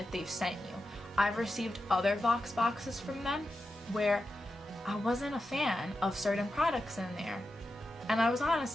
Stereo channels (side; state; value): both; normal; correlation 0.90